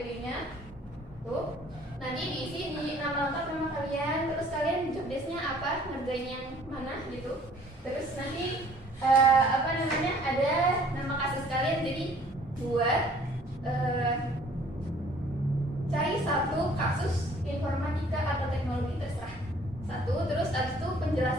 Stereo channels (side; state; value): both; normal; correlation 0.56